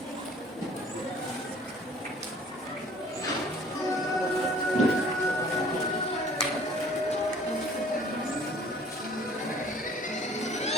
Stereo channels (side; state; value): both; normal; correlation 0.53